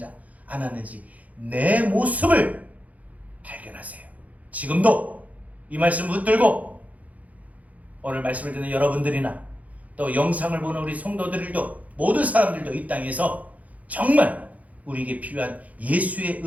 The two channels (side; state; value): left; late; 0.073 ms